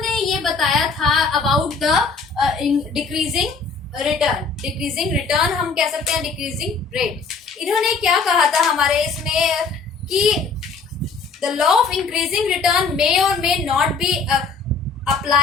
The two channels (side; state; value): right; quieter; 4.7 dB